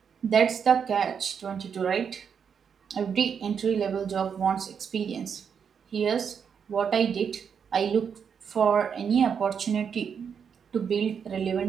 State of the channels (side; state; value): left; quieter; 7.0 dB